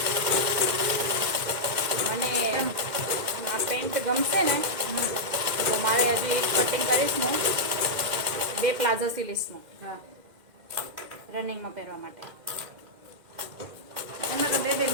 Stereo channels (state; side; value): late; left; 2.1 ms